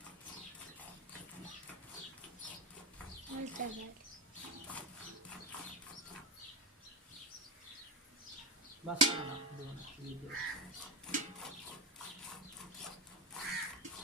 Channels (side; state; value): both; normal; correlation 0.10